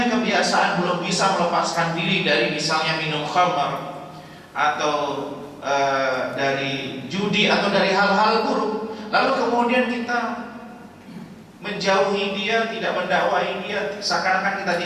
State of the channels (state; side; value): identical; both; correlation 1.00